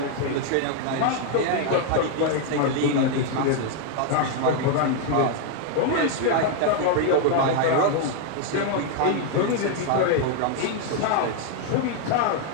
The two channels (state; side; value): different; both; correlation 0.00